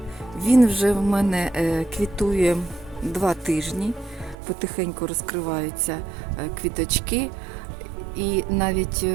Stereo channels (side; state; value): left; drops out; at 4.4 s